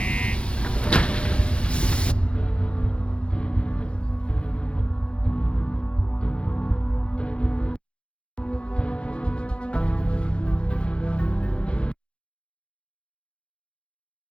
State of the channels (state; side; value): late; right; 0.057 ms